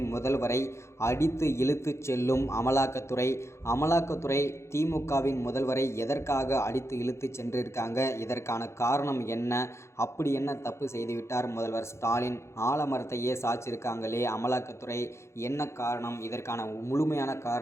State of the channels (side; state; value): right; late; 0.13 ms